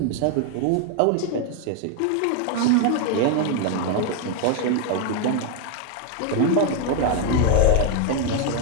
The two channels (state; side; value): different; both; correlation 0.01